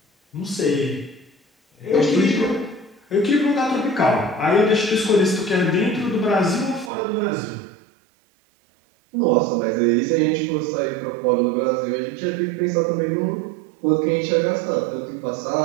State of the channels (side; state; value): left; drops out; at 6.9 s